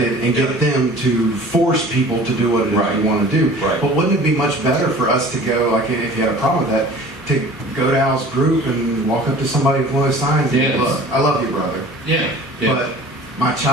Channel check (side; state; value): both; normal; correlation 0.44